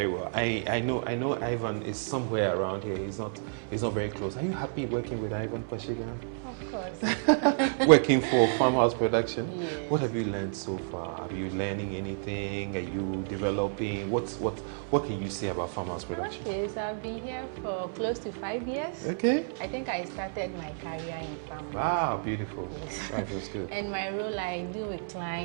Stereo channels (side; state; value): left; silent; 58 dB below the other